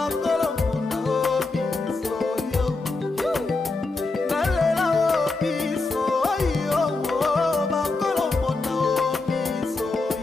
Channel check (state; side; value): quieter; right; 3.5 dB